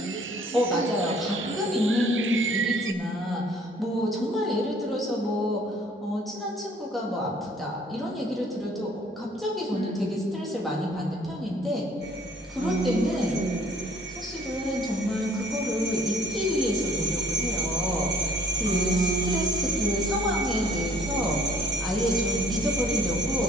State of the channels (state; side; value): normal; both; correlation 0.57